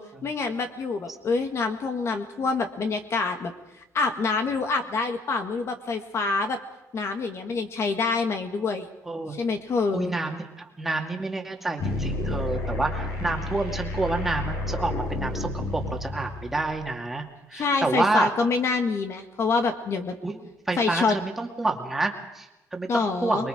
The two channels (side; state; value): both; normal; correlation 0.67